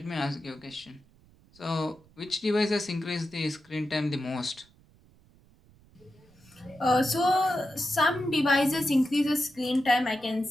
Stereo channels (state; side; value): noise; right; rumble, 29 dB below the sound